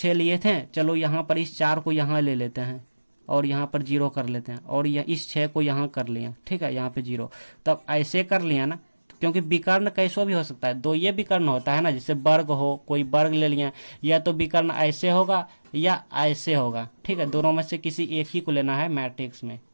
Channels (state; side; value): inverted; both; correlation -1.00